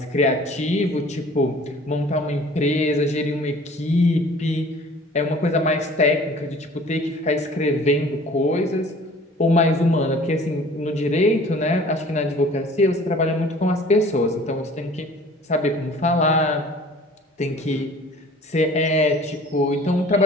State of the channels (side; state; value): both; normal; correlation 0.49